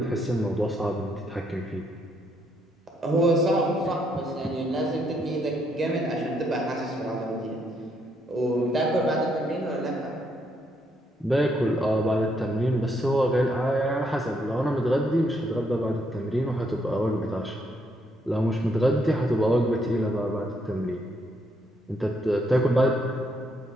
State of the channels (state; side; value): normal; both; correlation 0.74